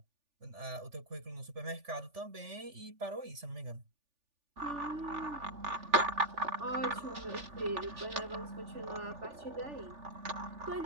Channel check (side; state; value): left; late; 3.4 ms